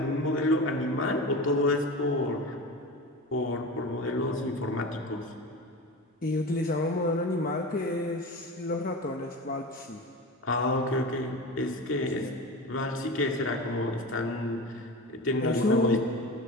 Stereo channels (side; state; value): both; normal; correlation 0.29